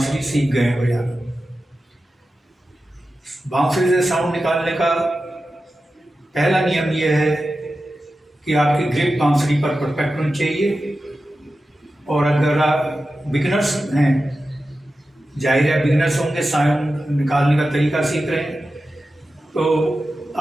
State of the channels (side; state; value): both; normal; correlation 0.93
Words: सीख गए हैं बजाना। बांसुरी से साउंड निकालने का पहला नियम यह है कि आपकी ग्रिप बांसुरी पर परफेक्ट होनी चाहिए। और अगर आप बिगिनर्स हैं, जाहिर है बिगिनर्स होंगे, साउंड निकालने का तरीका सीख रहे हैं, तो